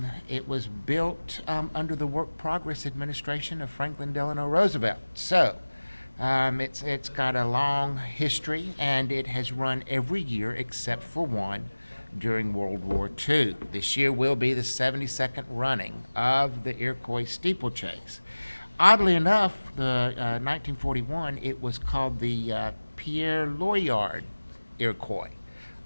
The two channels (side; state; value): both; inverted; correlation -1.00